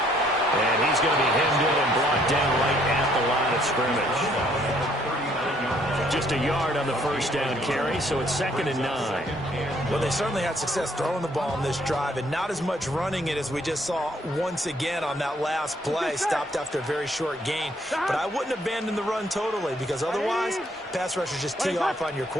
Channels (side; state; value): both; normal; correlation 0.66